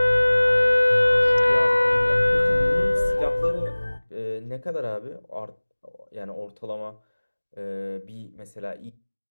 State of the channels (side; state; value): both; inverted; correlation -1.00